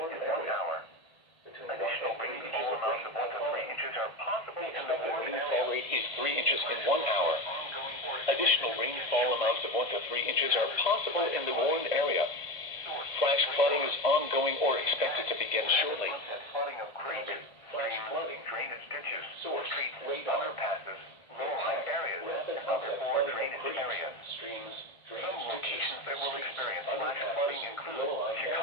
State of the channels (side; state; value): right; late; 1.5 ms